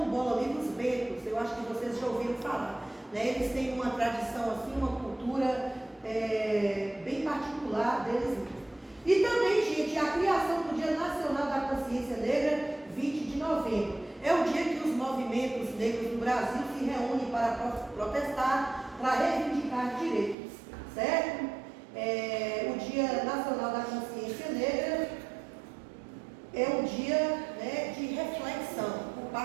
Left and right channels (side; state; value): left; drops out; at 20.4 s